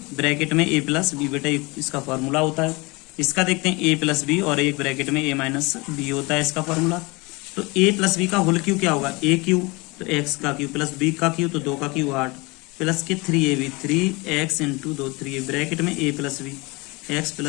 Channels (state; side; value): quieter; right; 25.6 dB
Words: ब्रैकेट में a प्लस बी, बेटा इसका फॉर्मूला होता है। इसका देखते हैं a प्लस बी और एक ब्रैकेट में a माइनस बी होता है इसका फॉर्मूला। तो a प्लस बी का होल क्यू क्या होगा, ए क्यू तो x का क्यू प्लस b का क्यू तो 2 का क्यू 8 प्लस के 3ab 3x इंटू 2 3 ब्रैकेट में a plus B x